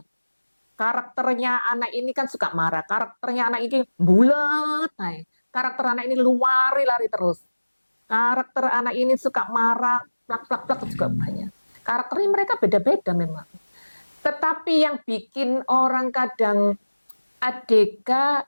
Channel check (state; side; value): inverted; both; correlation -1.00